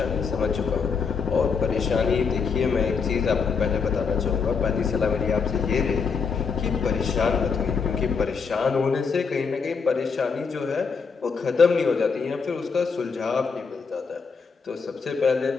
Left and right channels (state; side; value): quieter; right; 5.4 dB